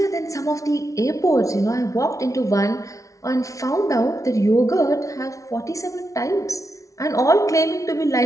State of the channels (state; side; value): late; right; 0.16 ms